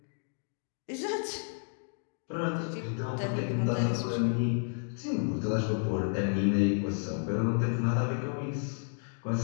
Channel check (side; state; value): right; silent; 57 dB below the other